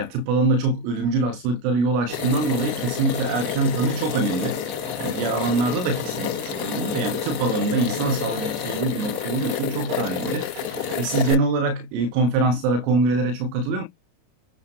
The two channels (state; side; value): late; left; 33 ms